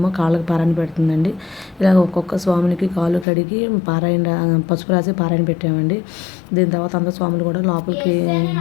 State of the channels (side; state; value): right; drops out; at 3.2 s